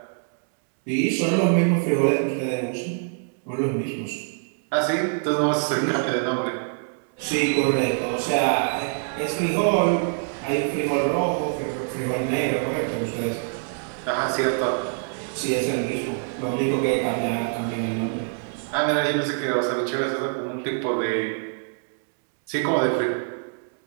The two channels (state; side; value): silent; left; 62 dB below the other